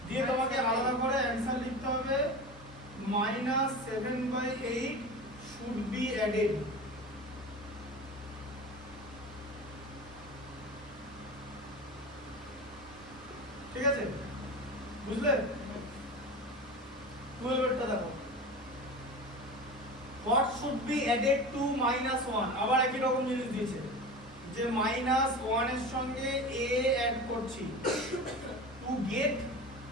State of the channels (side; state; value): both; normal; correlation 0.30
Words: দিয়ে তোমাকে আলাদা করে অ্যানসার লিখতে হবে -7/8 should be added ঠিক আছে বুঝলে 12 এরটা দেখো what should be added to -1 আবার একই রকম জিনিস দিয়েছে যে -1 এর সঙ্গে a অ্যাড করছি to get